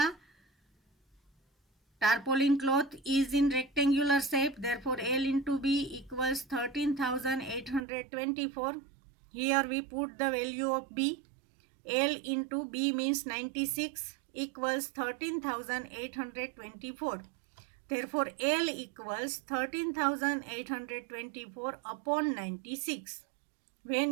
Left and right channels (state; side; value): drops out; left; at 7.9 s